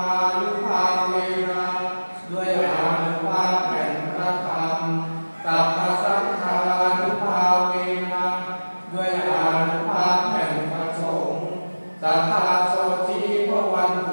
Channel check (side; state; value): both; inverted; correlation -1.00